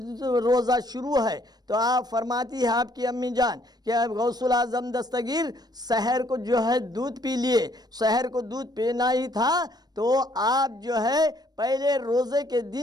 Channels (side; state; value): left; late; 0.19 ms